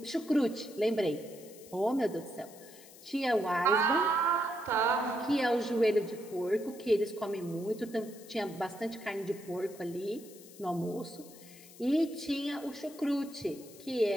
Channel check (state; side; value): noise; left; hiss, 20 dB below the sound